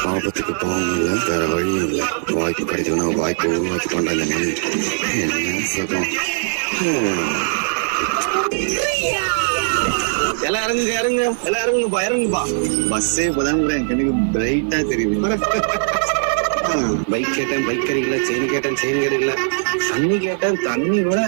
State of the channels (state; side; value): silent; left; 56 dB below the other